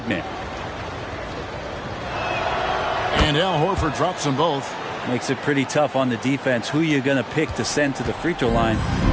man. And Al Horford drops them both. Makes it pretty tough on the defense. Who you going to pick to send to the free throw line?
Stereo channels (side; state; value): both; identical; correlation 1.00